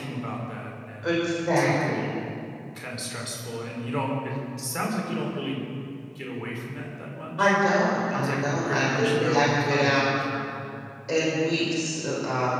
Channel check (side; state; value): both; identical; correlation 1.00